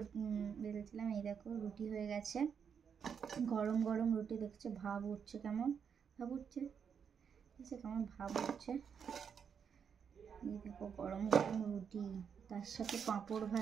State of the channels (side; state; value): left; quieter; 7.1 dB